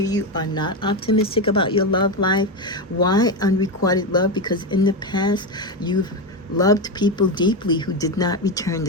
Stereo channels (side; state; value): both; normal; correlation 0.12